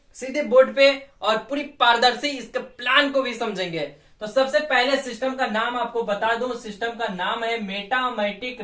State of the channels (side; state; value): both; identical; correlation 1.00